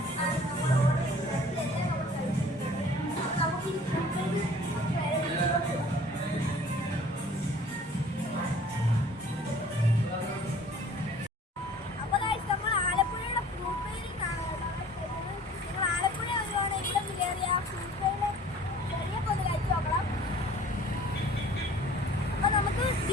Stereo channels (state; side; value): normal; both; correlation 0.49